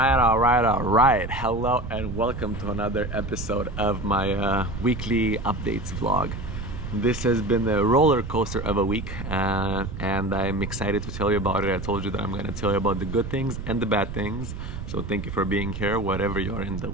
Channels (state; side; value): noise; right; rumble, 7 dB below the sound